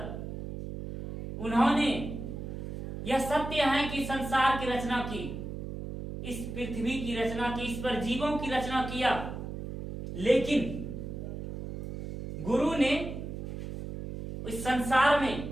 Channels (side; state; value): right; noise; hum, 7 dB below the sound